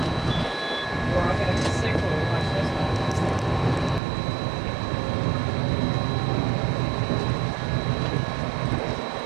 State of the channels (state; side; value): drops out; left; at 4.0 s